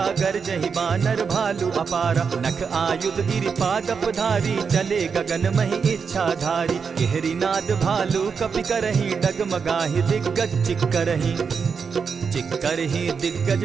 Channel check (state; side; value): quieter; left; 5.9 dB